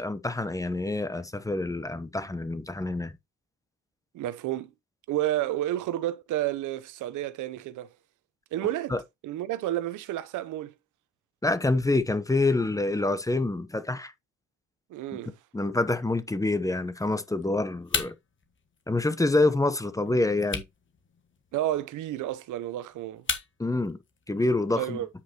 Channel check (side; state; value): both; normal; correlation 0.59